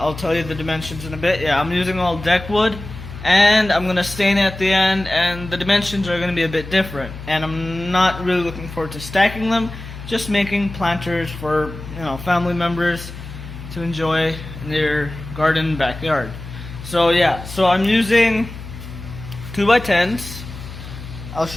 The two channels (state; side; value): noise; left; hum, 12 dB below the sound